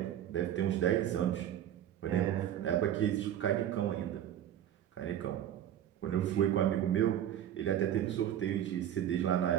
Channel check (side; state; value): left; quieter; 10.9 dB